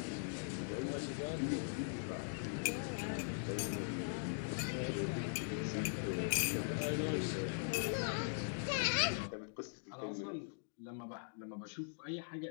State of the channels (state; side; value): silent; right; digital silence